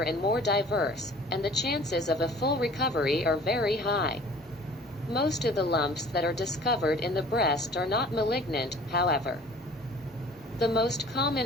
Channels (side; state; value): both; normal; correlation 0.48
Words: and more diverse, and the chances of a full recovery are very high. Most of the lumps that are discovered in the breast are not malignant, however. The most